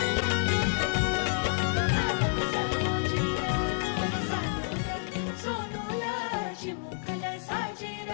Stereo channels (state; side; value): silent; right; digital silence